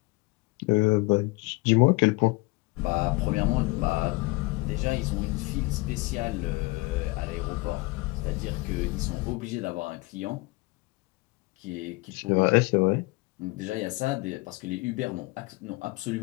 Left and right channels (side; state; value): right; quieter; 24.0 dB